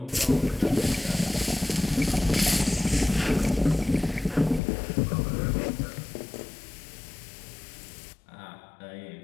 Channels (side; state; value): right; drops out; at 4.6 s